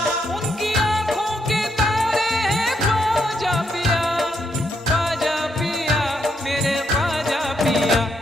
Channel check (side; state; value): both; normal; correlation 0.78